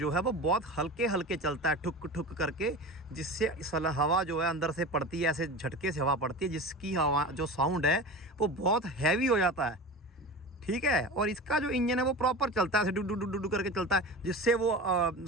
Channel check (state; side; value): normal; both; correlation 0.31